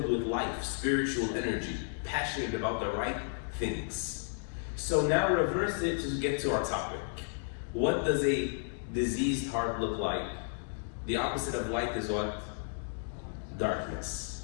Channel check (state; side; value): silent; right; digital silence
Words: with life, spiritual energy, passionate about the right things. So now reverse it to get to our topic. What does a diseased heart look like? The opposite of light is what?